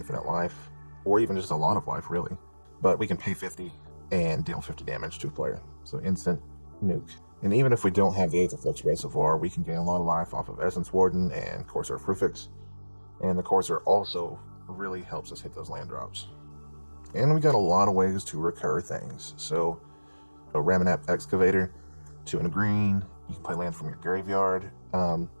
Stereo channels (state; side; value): inverted; both; correlation -1.00